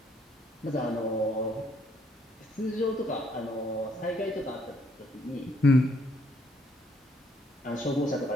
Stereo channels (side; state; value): both; normal; correlation 0.68